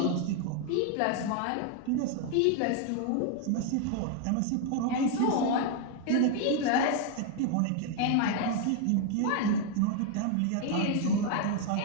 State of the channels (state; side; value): different; both; correlation 0.01